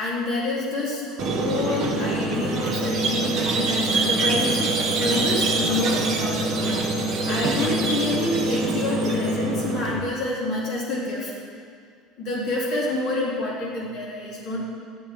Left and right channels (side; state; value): both; normal; correlation 0.46